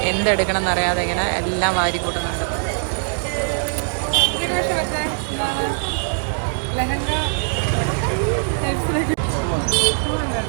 എന്തെടുക്കണം എന്നറിയാതെ ഇങ്ങനെ എല്ലാം വാരി കൂട്ടുന്നുണ്ട്.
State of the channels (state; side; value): silent; left; 57 dB below the other